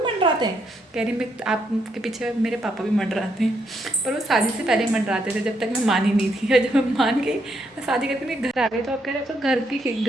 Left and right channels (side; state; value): both; normal; correlation 0.76